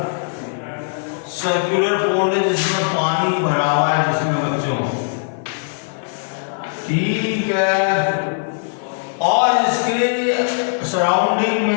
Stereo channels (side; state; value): right; silent; 58 dB below the other